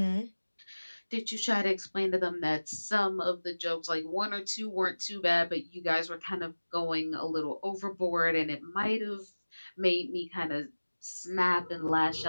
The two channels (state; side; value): inverted; both; correlation -1.00